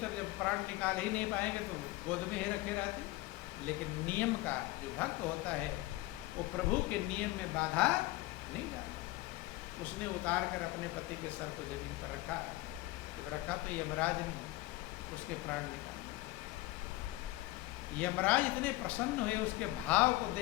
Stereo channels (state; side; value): quieter; right; 19.0 dB